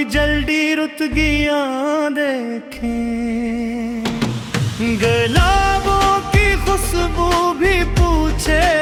जल्दी रुतगियां देखी। गुलाबों की खुशबू भी पूछे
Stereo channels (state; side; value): identical; both; correlation 1.00